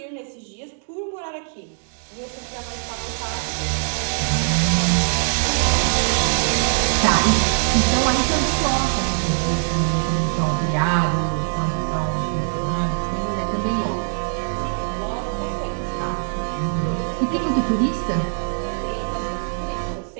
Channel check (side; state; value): left; silent; 64 dB below the other